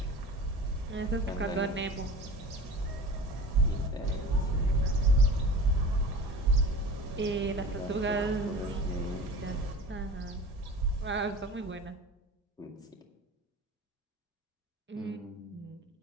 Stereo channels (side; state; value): both; normal; correlation 0.37